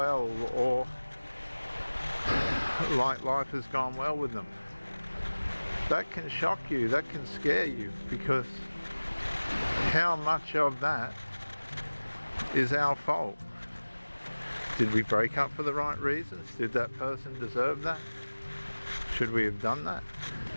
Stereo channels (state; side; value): inverted; both; correlation -1.00